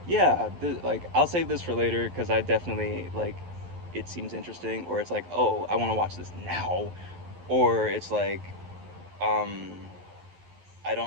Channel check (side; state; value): left; late; 11 ms